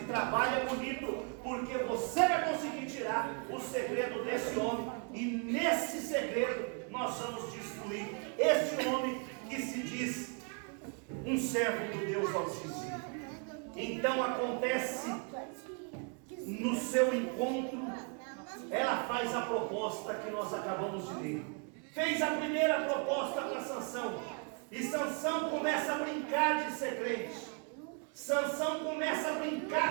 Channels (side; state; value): left; quieter; 38.6 dB